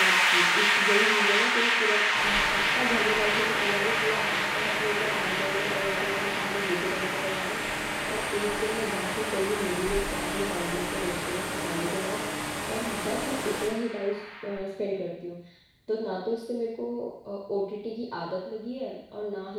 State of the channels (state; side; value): identical; both; correlation 1.00